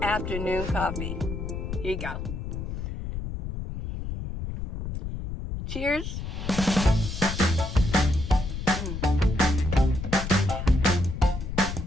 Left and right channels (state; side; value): noise; left; rumble, 5 dB below the sound